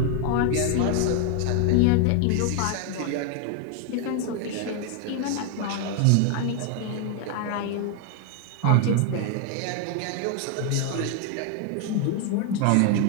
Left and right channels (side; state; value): both; different; correlation 0.00